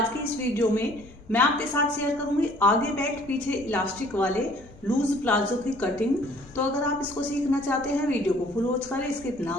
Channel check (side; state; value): both; normal; correlation 0.56